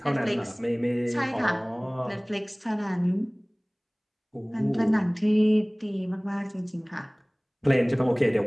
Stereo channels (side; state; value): both; identical; correlation 1.00